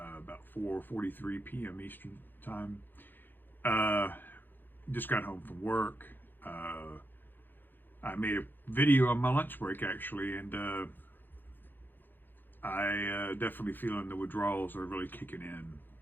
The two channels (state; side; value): late; right; 0.092 ms